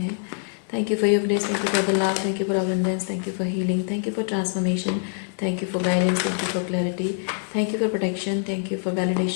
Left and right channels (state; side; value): silent; right; 58 dB below the other